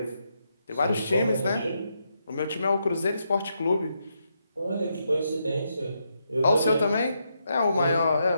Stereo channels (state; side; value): inverted; both; correlation -0.81